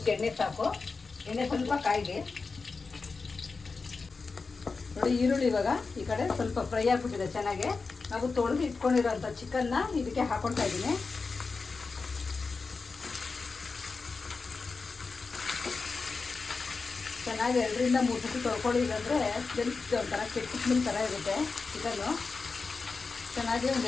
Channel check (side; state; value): right; quieter; 4.4 dB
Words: ಎಣ್ಣೆ ಸಾಕು. ಎಣ್ಣೆ ಸ್ವಲ್ಪ ಕಾಯಿದೆ. ನೋಡಿ, ಈರುಳ್ಳಿ ಇವಾಗ ಈ ಕಡೆ ಸ್ವಲ್ಪ ಫ್ರೈ ಆಗಿಬಿಟ್ಟಿದೆ ಚೆನ್ನಾಗಿ. ನಾವು ತೊಳೆದು ಇಟ್ಕೊಂಡಿರೋಂಥ ಚಿಕನ್ನ ಇದಕ್ಕೆ ಹಾಕೊಳ್ತಾ ಇದ್ದೀನಿ. ಚೆನ್ನಾಗಿ 2-3 ಸತಿ ತೊಳ್ಕೊಳ್ಳಿ, ಇಲ್ಲಾಂದರೆ ಒಂಥರ ಕೆಟ್ಟ ಸ್ಮೆಲ್ ಥರ ಇರುತ್ತೆ ಚಿಕನ್ನು. ಚೆನ್ನಾಗಿ ಒಂದು